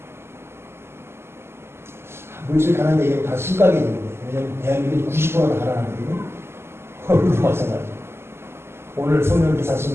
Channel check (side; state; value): left; late; 0.12 ms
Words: 물질 가난 얘기는 다 심각해 되는데 왜냐하면 대한민국이 90%가 가난하거든요. 우리도 마찬가지죠. 오늘 성령